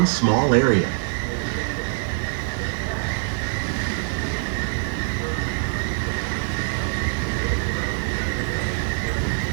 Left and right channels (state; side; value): silent; left; 59 dB below the other